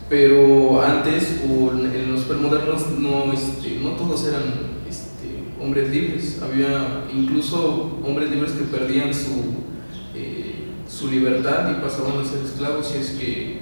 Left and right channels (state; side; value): inverted; both; correlation -1.00